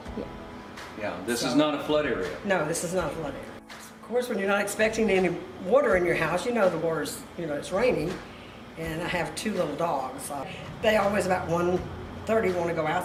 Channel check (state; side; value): identical; both; correlation 1.00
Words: Yeah, this is not a flood area. No, this is not a flood area. Of course, when you're not expecting any water in your house, you know the water's, it's raining. And I have 2 little dogs. They always about 1:30 want to go